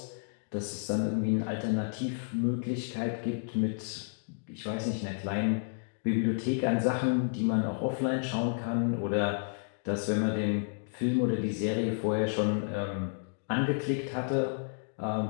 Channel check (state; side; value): silent; right; digital silence